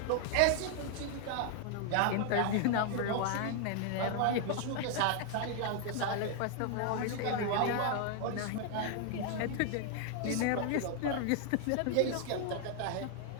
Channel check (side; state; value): both; different; correlation 0.00